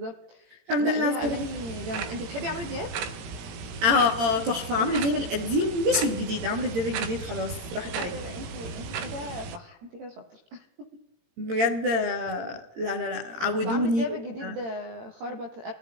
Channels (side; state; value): left; late; 18 ms